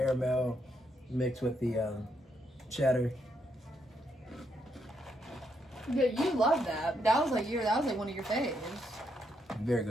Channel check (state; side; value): normal; both; correlation 0.77